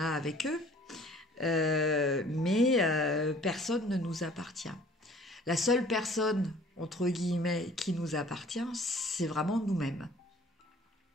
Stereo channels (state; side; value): normal; both; correlation 0.52